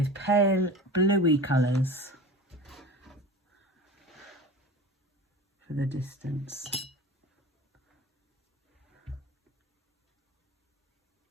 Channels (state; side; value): normal; both; correlation 0.35